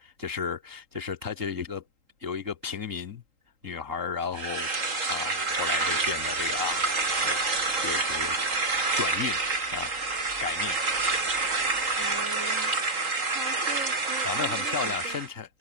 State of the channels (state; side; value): late; left; 3.8 ms